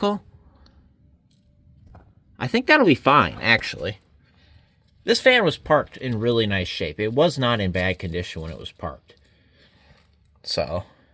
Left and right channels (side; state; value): both; identical; correlation 1.00